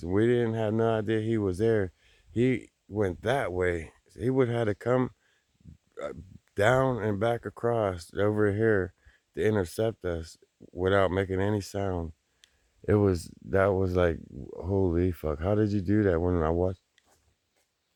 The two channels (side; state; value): both; identical; correlation 1.00